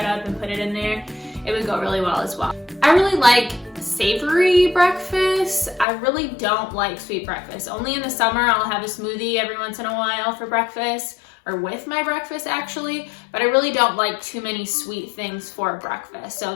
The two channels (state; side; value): drops out; right; at 5.9 s